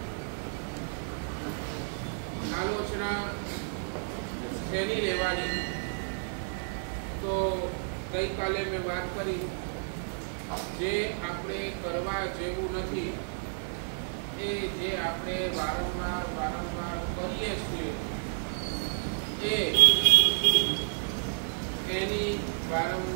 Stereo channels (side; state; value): left; silent; 57 dB below the other